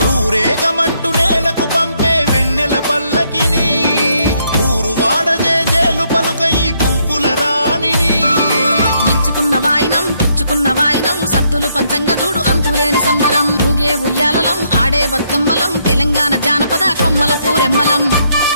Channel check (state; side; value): inverted; both; correlation -0.73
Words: ఊరేగమంటూ నేలకు పంపే వెన్నెల పల్లకిని ఊరు వాడ జేజేలు పలుకై పువ్వుల రాణిని ఇచ్చుకున్న వాయినం పుచ్చుకున్న వాయినం సత్తులు పంచంగా చూడు అంతులేని సంబరం ఊగే ఉయ్యాలలం ఆడే బతుకమ్మలం తెలంగాణ జానపద కొమ్మల పూరెమ్మలం